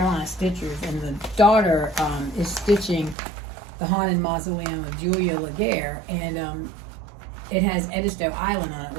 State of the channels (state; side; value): drops out; left; at 3.2 s